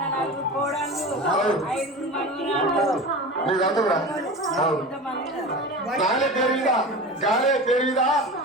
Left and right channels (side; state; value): both; normal; correlation 0.31